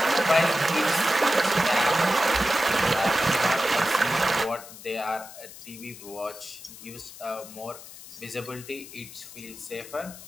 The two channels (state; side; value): noise; left; hiss, 16 dB below the sound